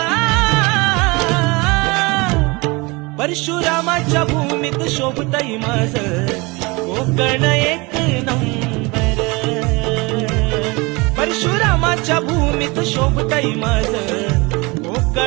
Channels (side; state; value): left; quieter; 25.6 dB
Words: परशुरामाच्या भूमीत शोभतय माझं कोकण एक नंबर, परशुरामाच्या भूमीत शोभतय माझं